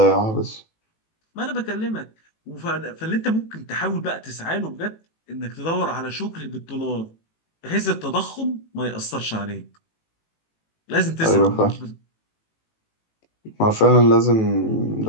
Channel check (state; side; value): late; right; 18 ms